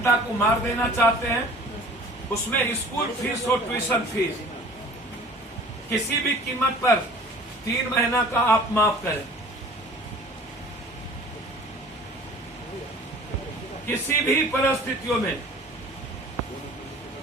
को मार देना चाहते हैं? उसमें स्कूल फीस और ट्यूशन फीस किसी भी कीमत पर 3 महीना का आप माफ करें। किसी भी परिस्थितियों में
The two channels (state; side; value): normal; both; correlation 0.46